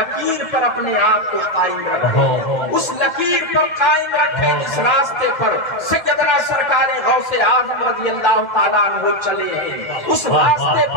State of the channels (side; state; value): right; late; 1.8 ms